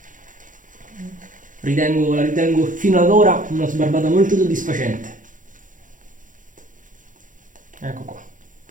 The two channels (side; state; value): left; late; 0.38 ms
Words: La ritengo fino ad ora una sbarbata molto soddisfacente. Ecco qua.